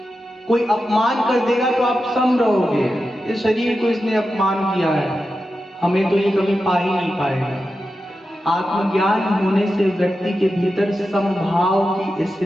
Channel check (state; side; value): normal; both; correlation 0.91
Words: कोई अपमान कर देगा तो आप सम रहोगे। इस शरीर को इसने अपमान किया है, हमें तो ये कभी पा ही नहीं पाएगा। आत्मज्ञान होने से व्यक्ति के भीतर समभाव की